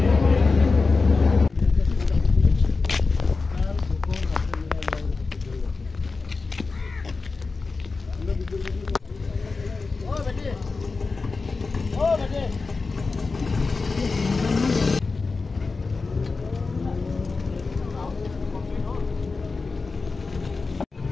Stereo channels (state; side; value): quieter; right; 4.1 dB